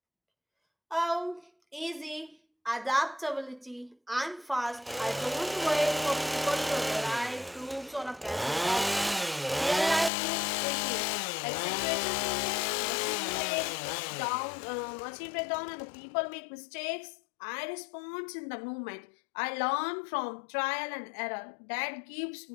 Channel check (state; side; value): drops out; right; at 10.1 s